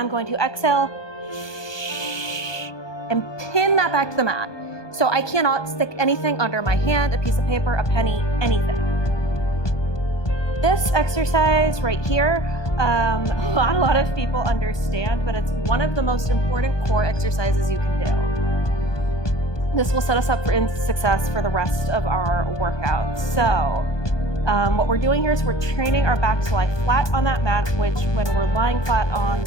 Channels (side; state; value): right; late; 1.2 ms